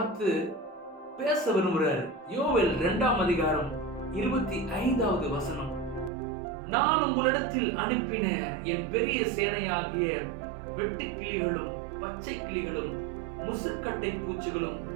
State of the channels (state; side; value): drops out; left; at 6.1 s